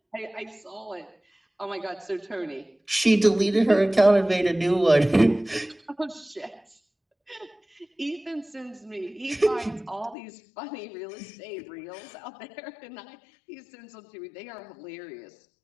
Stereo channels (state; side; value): drops out; right; at 10.2 s